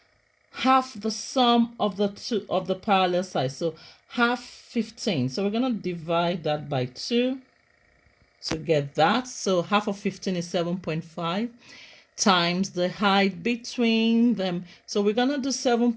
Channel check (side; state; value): both; identical; correlation 1.00